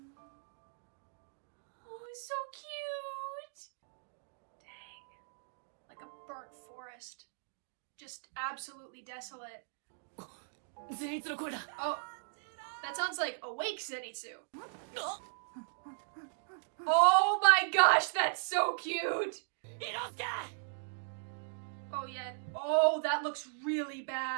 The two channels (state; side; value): silent; left; digital silence